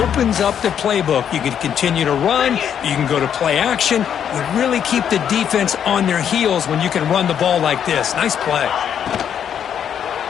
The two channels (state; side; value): quieter; right; 8.8 dB